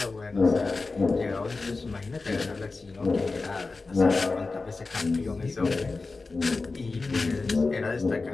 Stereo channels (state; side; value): quieter; right; 3.8 dB